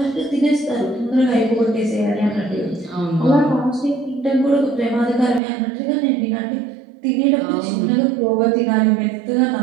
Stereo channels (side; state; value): left; drops out; at 5.4 s